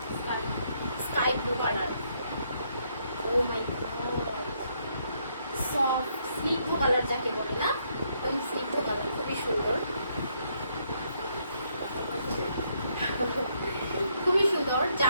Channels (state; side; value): inverted; both; correlation -0.73